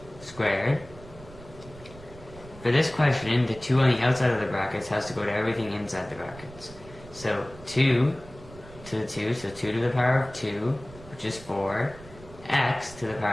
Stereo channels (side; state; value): right; noise; rumble, 19 dB below the sound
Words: squared. For this question, the 2 on the outside of the brackets has to go to everything inside the brackets. So 2 to the 2, so 2 to the power of 2, which is 4, x to the